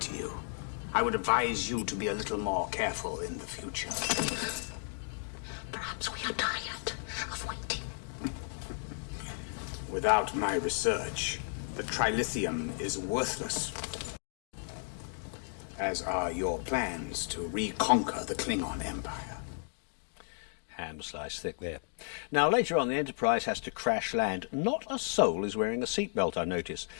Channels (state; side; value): silent; right; digital silence